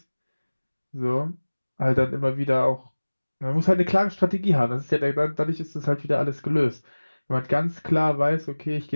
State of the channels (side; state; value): both; inverted; correlation -1.00